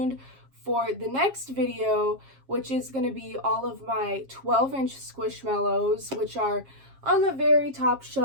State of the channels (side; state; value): left; late; 7.4 ms